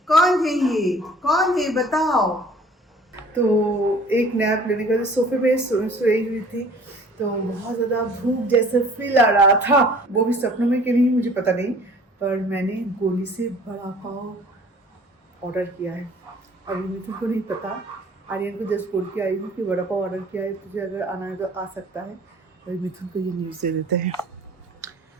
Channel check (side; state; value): both; normal; correlation 0.50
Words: कौन है ये? कौन है बताओ? तो एक नैप लेने के बाद सोफे पे सोई हुई थी, तो बहुत ज़्यादा भूख जैसा फील आ रहा था। वो भी सपनों में कि नहीं मुझे पता नहीं, पर मैंने गोली से बड़ा पाव ऑर्डर किया है। अभी मिथुन को नहीं पता, आर्यन को जस्ट बोल के आई हूँ कि बड़ा पाव ऑर्डर किया है, तुझे अगर आना है तो आ सकता है। अभी मिथुन को ये न्यूज़ दे देते हैं।